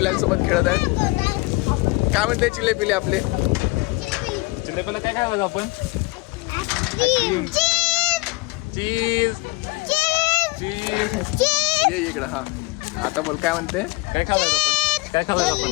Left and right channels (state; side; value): quieter; right; 24.5 dB